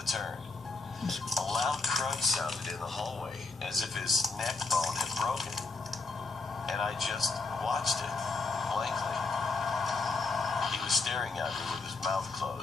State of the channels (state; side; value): quieter; right; 3.9 dB